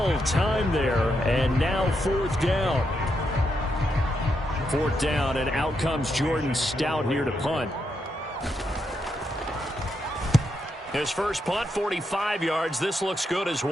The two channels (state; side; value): normal; both; correlation 0.82